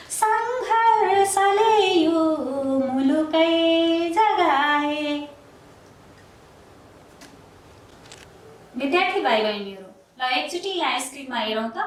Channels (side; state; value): both; identical; correlation 1.00